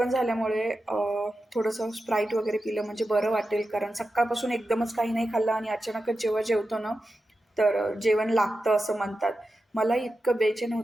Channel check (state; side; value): normal; both; correlation 0.91